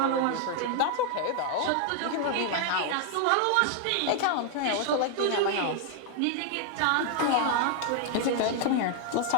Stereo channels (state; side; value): different; both; correlation 0.00